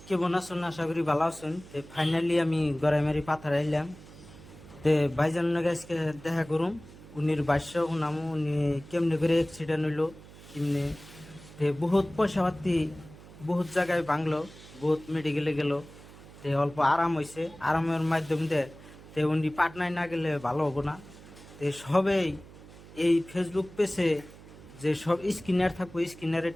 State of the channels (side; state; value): right; noise; hum, 19 dB below the sound